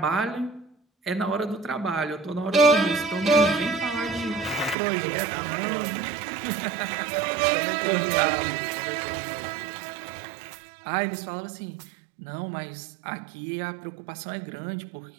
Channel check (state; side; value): drops out; left; at 4.8 s